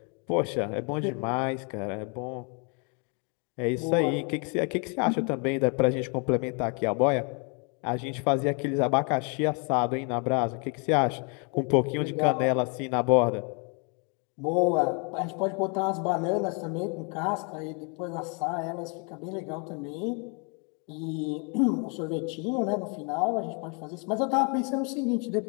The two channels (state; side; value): quieter; right; 36.0 dB